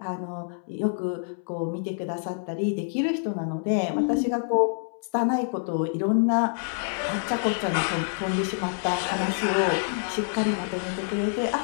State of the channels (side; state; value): right; silent; 60 dB below the other